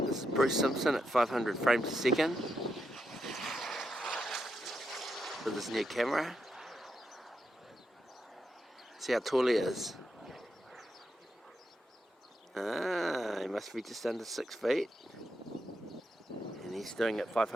This is Bruce Simpson at 500 frames a second with his new camera. See how tall he is. He must be just under 6 feet. And he's doing it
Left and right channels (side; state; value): both; normal; correlation 0.83